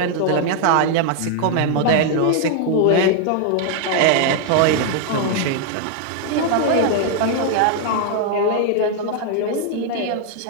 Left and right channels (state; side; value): different; both; correlation 0.00